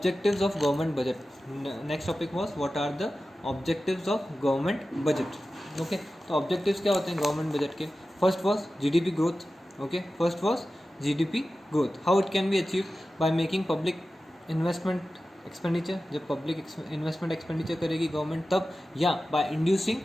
of government budget? Next topic was what are the objectives of government budget. Okay, तो objectives क्या होते हैं government budget के? First was GDP growth. Okay, first was GDP growth. How it can be achieved? By making public investment expenditure. जब public investment expenditure करेगी गवर्नमेंट तब, या by inducing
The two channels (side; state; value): both; normal; correlation 0.94